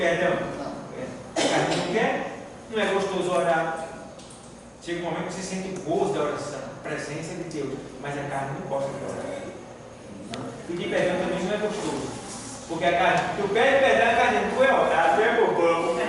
Não. A carne não quer? Não é gostoso orar? Chega um momento que você sente o gozo da oração, a presença de Deus, mas a carne não gosta de orar. Pedir perdão também não é gostoso. Porque a carne, tu pede perdão, a carne não foi orar, tu é bobão.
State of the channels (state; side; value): identical; both; correlation 1.00